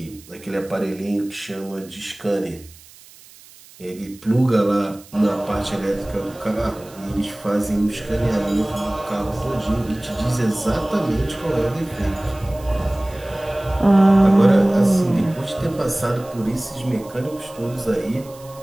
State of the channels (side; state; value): right; noise; hiss, 23 dB below the sound